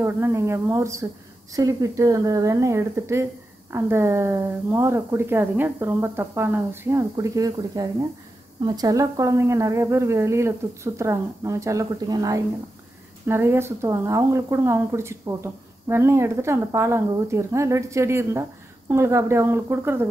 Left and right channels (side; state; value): both; normal; correlation 0.90